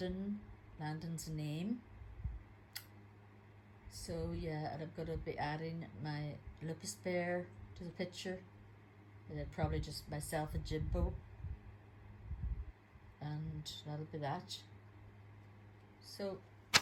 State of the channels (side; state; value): both; identical; correlation 1.00